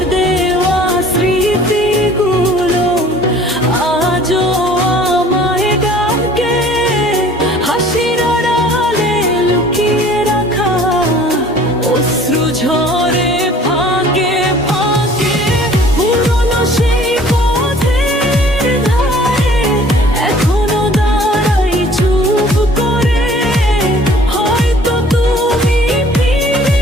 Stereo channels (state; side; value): normal; both; correlation 0.52